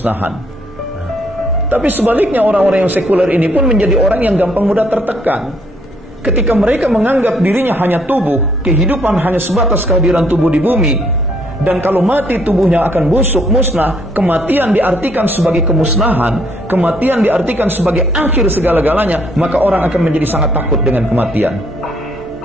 Nah, tapi sebaliknya orang-orang yang sekuler ini pun menjadi orang yang gampang mudah tertekan. Ketika mereka menganggap dirinya hanya tubuh, kehidupan hanya sebatas kehadiran tubuh di bumi, dan kalau mati tubuhnya akan busuk, musnah, kematian diartikan sebagai kemusnahan, kematian diartikan sebagai akhir segala-galanya, maka orang akan menjadi sangat takut dengan kematian.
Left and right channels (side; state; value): both; normal; correlation 0.68